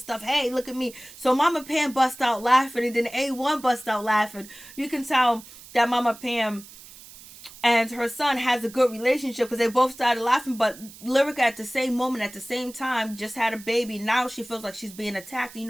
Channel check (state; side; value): noise; right; hiss, 19 dB below the sound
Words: Hey, look at me. So Mama Pam bust out laughing, and then A1 bust out laughing. You can tell that Mama Pam and her son has a good relationship because they both started laughing. But Lyrica at the same moment, at the same time, just had a baby. Now she feels like she's being attacked. You